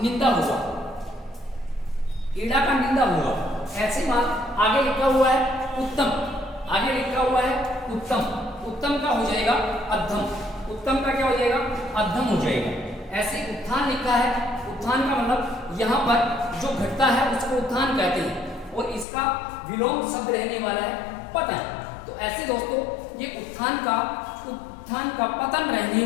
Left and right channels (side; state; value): right; drops out; at 19.1 s